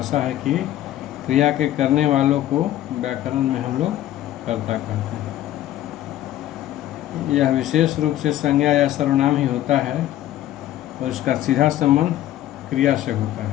है कि क्रिया के करने वालों को व्याकरण में हम लोग कर्ता कहते हैं। यह विशेष रूप से संज्ञा या सर्वनाम ही होता है और इसका सीधा संबंध क्रिया से होता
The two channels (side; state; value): right; quieter; 13.2 dB